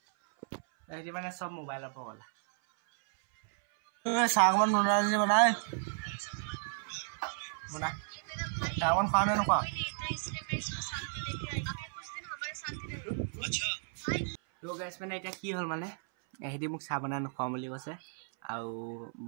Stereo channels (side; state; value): left; silent; 55 dB below the other